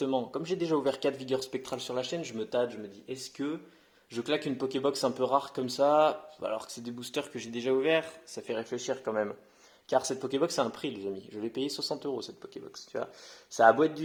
comme j'ai déjà ouvert 4 vigueurs spectrales sur la chaîne, je me tâte, je me dis, est-ce que je claque une Pokébox un peu rare comme ça, alors que c'est des boosters que j'ai déjà ouverts? Ça fait réfléchir quand même. Car cette Pokébox a un prix, les amis. Je l'ai payé 60 euros cette Pokébox, tu vois. Ça a beau être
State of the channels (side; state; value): both; identical; correlation 1.00